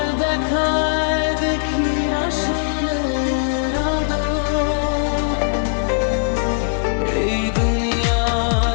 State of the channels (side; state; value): right; silent; 66 dB below the other